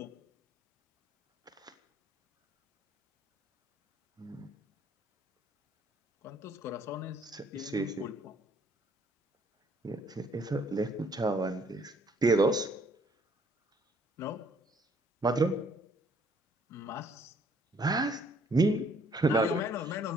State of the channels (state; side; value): normal; both; correlation 0.63